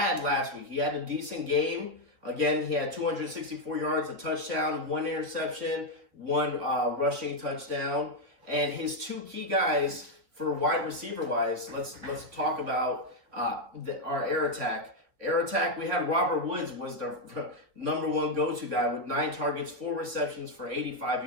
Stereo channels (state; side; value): late; left; 3.6 ms